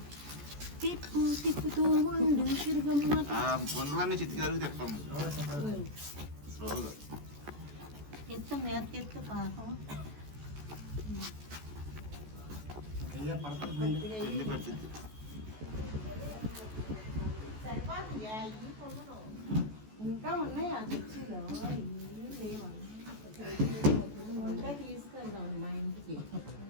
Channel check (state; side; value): late; left; 14 ms